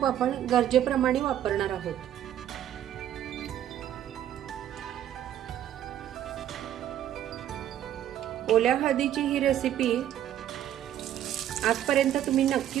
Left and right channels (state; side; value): quieter; left; 11.2 dB